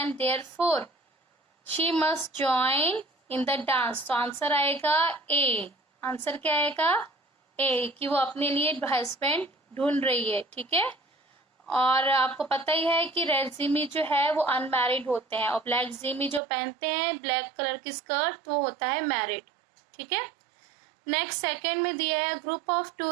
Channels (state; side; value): drops out; left; at 16.4 s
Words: therefore she must join in the dance. तो आंसर आएगा ए। आंसर क्या आएगा? ए, कि वो अपने लिए हस्बैंड ढूंढ रही है, ठीक है। और आपको पता ही है कि रेड जिमी जो है वो अनमैरिड होते हैं और ब्लैक जिमी जो पहनते हैं ब्लैक कलर की स्कर्ट वो होता है मैरिड, ठीक है। नेक्स्ट सेकंड में दिया है group of